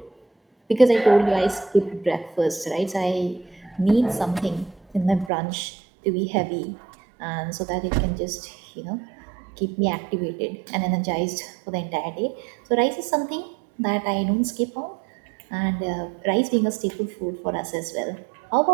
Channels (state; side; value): drops out; left; at 5.3 s